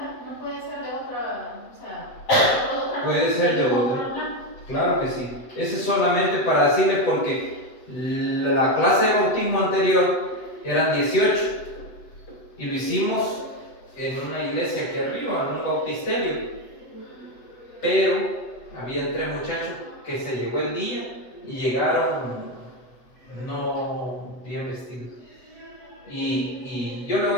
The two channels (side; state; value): right; late; 8.0 ms